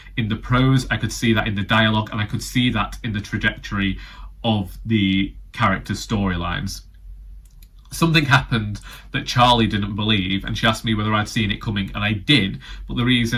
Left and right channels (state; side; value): identical; both; correlation 1.00